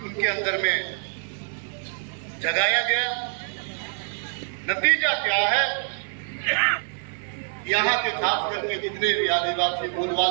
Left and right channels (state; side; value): silent; left; digital silence